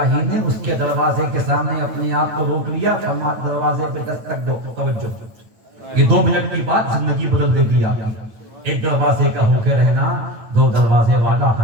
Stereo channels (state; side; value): late; left; 9.2 ms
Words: نے اس کے دروازے کے سامنے اپنے آپ کو روک لیا، فرمایا دروازے پہ دستک دو، توجہ، یہ 2 منٹ کی بات زندگی بدل دے گی آپ کی۔ ایک دروازے کا ہو کے رہنا، 2 دروازے والا